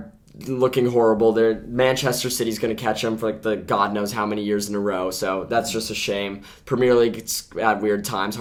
looking horrible. Manchester City's going to catch them for like the God knows how many years in a row. So that's just a shame. Premier League, it's at weird times,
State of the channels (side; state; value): both; identical; correlation 1.00